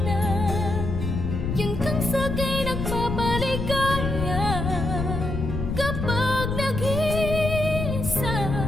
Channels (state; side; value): noise; left; rumble, 3 dB below the sound